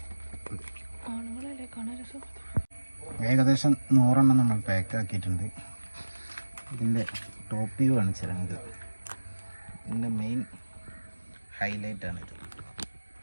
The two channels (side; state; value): both; inverted; correlation -1.00